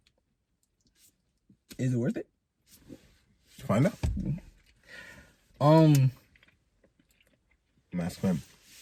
Is it worth it? Find out. Mask Femme.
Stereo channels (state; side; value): identical; both; correlation 1.00